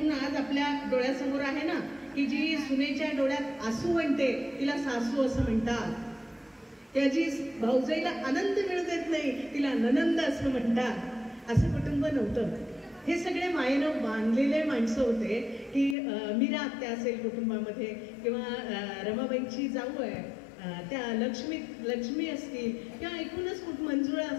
आज आपल्या डोळ्यासमोर आहे ना, की जी सुनेच्या डोळ्यात आसू म्हणते तिला सासू असं म्हणतात, त्याची भाऊजाईला आनंद मिळू देत नाही तिला ननंद असं म्हणतात. असं कुटुंब नव्हतं. हे सगळे मायेनं बांधलेले माणसं होते. की मीरा आत्या असेल कुटुंबामध्ये किंवा रमाबाईंची जाऊ आहे त्या लक्ष्मी असतील किंवा एकूणच मंजुळा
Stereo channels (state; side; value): drops out; right; at 16.0 s